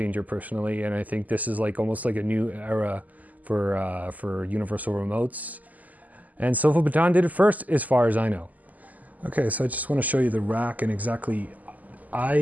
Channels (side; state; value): left; late; 0.079 ms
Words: personally. And I think this is almost like a new era for universal remotes. And SofaBaton did it first, as far as I know. Okay, so I just want to show you the rack and exactly,